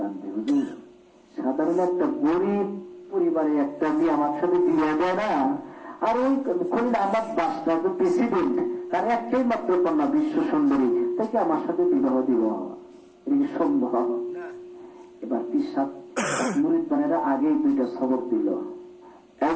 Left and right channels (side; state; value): both; identical; correlation 1.00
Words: হুজুর সাধারণ একটা গরিব পরিবারে একটা মেয়ে আমার সাথে বিয়ে দেয় না, আর ওই খলিল আহমদ বাদশাহ প্রেসিডেন্ট, তার একটাই মাত্র কন্যা বিশ্ব সুন্দরী, তাকে আমার সাথে বিবাহ দিব, এটা সম্ভব? এবার পিসাব মুরিদ বানেরা আগেই দুইটা সবক দিল। এক